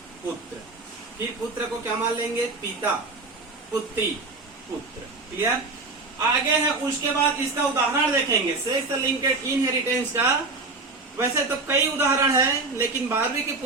पुत्र। फिर पुत्र को क्या मान लेंगे, पिता पुत्री पुत्र। क्लियर? आगे है उसके बाद इसका उदाहरण देखेंगे सेक्स लिंकेड इनहेरिटेंस का। वैसे तो कई उदाहरण है, लेकिन 12वीं की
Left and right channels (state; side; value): quieter; left; 3.6 dB